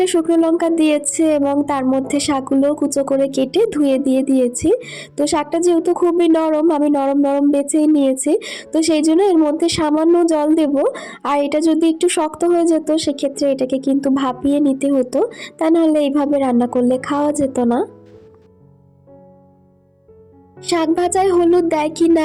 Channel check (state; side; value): identical; both; correlation 1.00